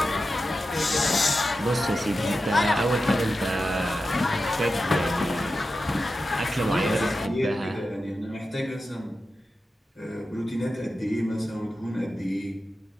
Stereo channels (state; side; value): normal; both; correlation 0.92